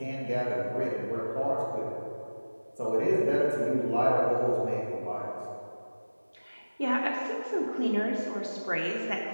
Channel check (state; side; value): inverted; both; correlation -1.00